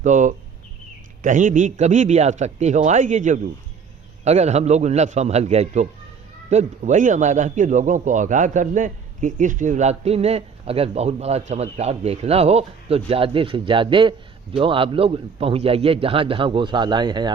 तो कहीं भी कभी भी आ सकती हो, आएगी जरूर, अगर हम लोग न संभल गए तो वही हमारा कि लोगों को आगाह कर दें कि इस शिवरात्रि में अगर बहुत बड़ा चमत्कार देखना हो तो ज़्यादा से ज़्यादा जो आप लोग पहुंच जाइए, जहाँ जहाँ गौशालाएँ हैं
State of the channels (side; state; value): left; quieter; 6.1 dB